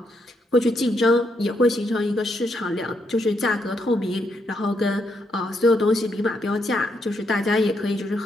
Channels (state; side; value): normal; both; correlation 0.78